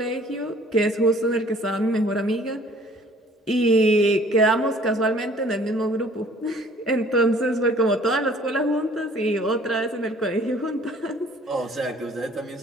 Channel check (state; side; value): normal; both; correlation 0.55